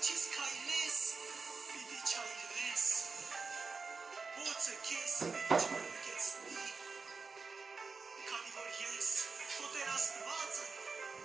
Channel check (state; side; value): quieter; left; 4.6 dB